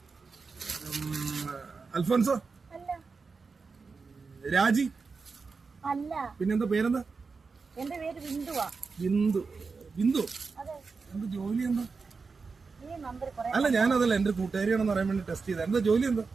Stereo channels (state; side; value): quieter; left; 4.7 dB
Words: Alphonso? രാജി? അല്ല. പിന്നെന്താ പേരെന്താ? എന്റെ പേര് ബിന്ദുവാ. ബിന്ദു? ബിന്ദു എന്ത് ജോലി എന്താ? അല്ല, ഞാനതല്ല, എന്റെ കൂട്ടുകാരിയാണെന്ന് പറയാൻ വേണ്ടി ടെസ്റ്റ് ചെയ്ത. എന്താ ജോലി എന്താ?